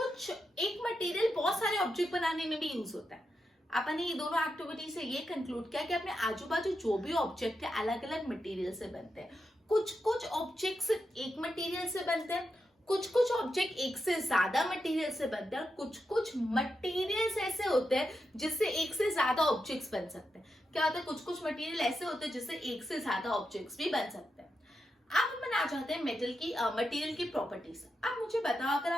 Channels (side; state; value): both; normal; correlation 0.86